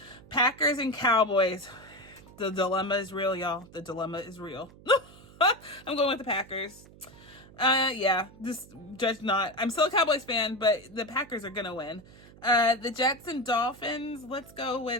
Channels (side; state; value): right; noise; hum, 22 dB below the sound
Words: Packers and Cowboys. The dilemma is real, y'all. The dilemma is real. I'm going with the Packers. Yeah, just judge not. I'm still a Cowboys fan, but the Packers are going to win. The Jets and Dolphins. Let's go